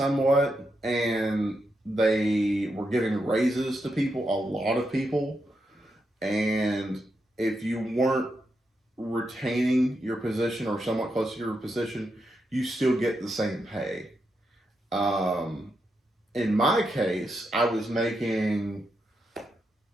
and they were giving raises to people, a lot of people. And if you weren't retaining your position or somewhat close to your position, you still get the same pay. In my case, I was making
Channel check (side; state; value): both; normal; correlation 0.84